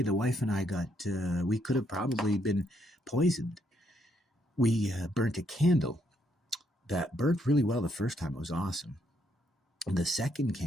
the wife and I we could have probably been poisoned. We burnt a candle that burnt really well the first time. It was awesome. The second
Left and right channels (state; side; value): normal; both; correlation 0.74